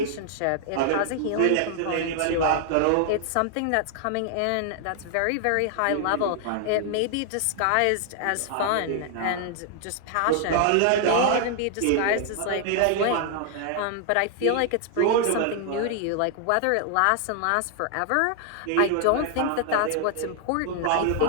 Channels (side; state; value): both; different; correlation 0.00